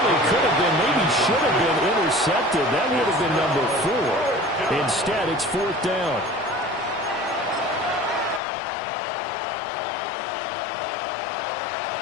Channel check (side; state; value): right; drops out; at 8.4 s